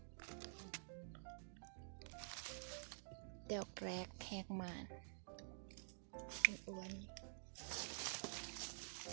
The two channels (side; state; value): left; silent; digital silence